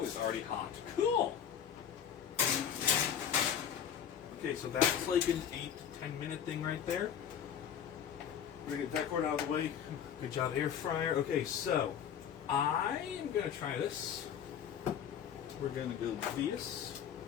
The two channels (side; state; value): right; quieter; 8.7 dB